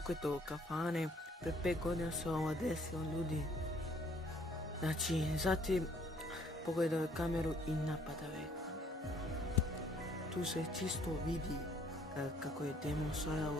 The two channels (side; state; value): both; normal; correlation 0.62